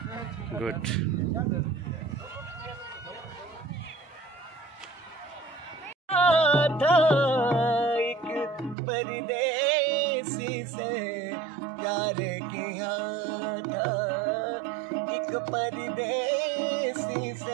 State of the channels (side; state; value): left; drops out; at 8.8 s